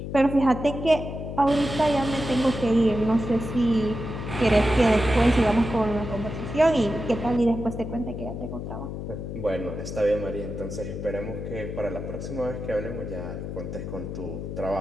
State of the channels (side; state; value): left; noise; hum, 7 dB below the sound